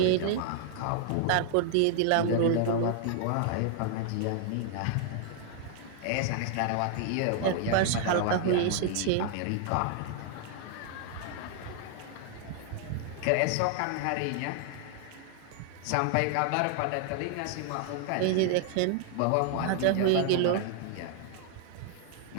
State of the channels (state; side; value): different; both; correlation 0.00